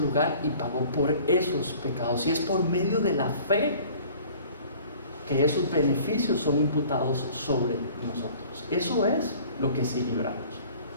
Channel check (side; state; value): both; inverted; correlation -0.49